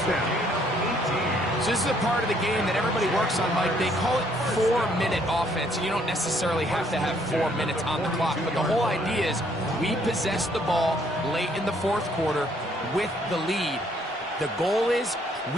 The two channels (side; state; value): both; normal; correlation 0.66